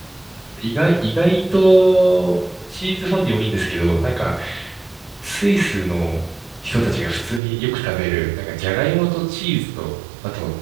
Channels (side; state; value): left; drops out; at 7.4 s